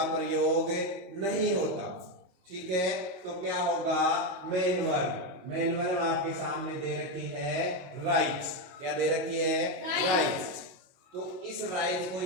प्रयोग नहीं होता, ठीक है। तो क्या होगा, मेन वर्ब आपके सामने दे रखी है राइट। क्या दे रखी है, राइट। तो इस राइज को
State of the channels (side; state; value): left; late; 22 ms